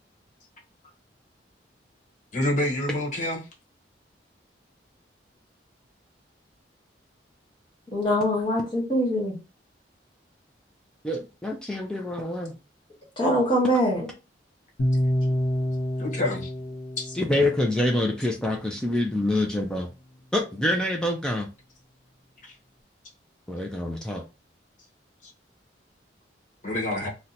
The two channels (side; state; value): both; normal; correlation 0.67